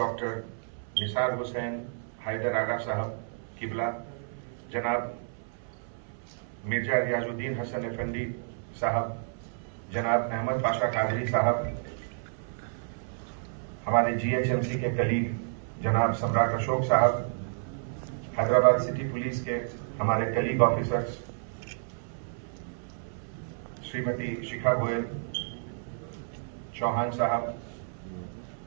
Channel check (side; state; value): left; silent; 58 dB below the other